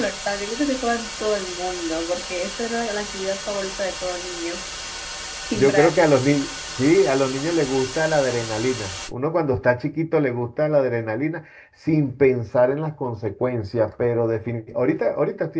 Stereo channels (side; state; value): both; identical; correlation 1.00